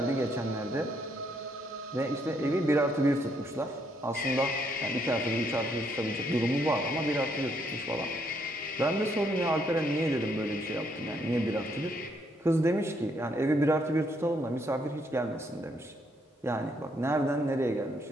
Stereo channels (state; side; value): normal; both; correlation 0.72